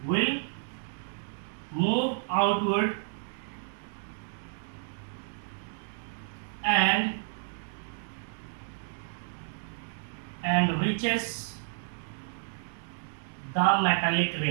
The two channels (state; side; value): silent; left; digital silence